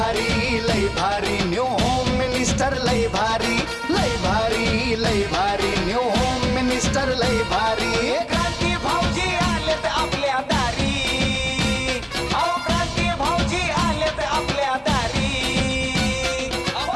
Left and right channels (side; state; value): both; identical; correlation 1.00